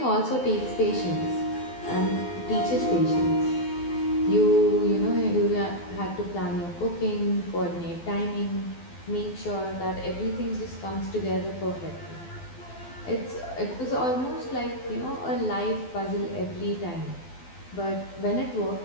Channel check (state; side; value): late; right; 12 ms